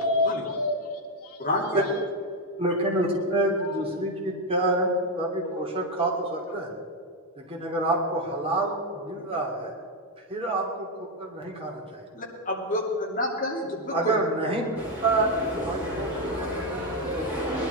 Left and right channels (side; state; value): both; normal; correlation 0.05